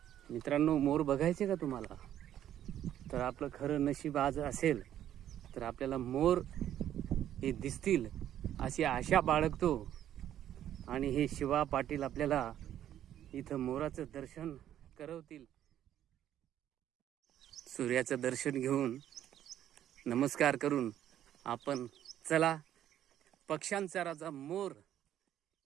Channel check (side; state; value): left; quieter; 11.2 dB